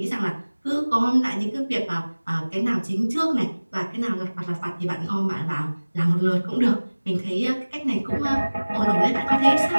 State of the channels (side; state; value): both; inverted; correlation -1.00